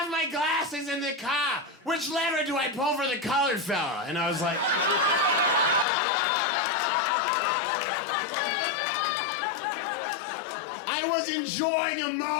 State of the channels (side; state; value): right; drops out; at 5.9 s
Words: my glasses in the car. Which lever do I pull for the colored fella? And I was like... I was enjoying a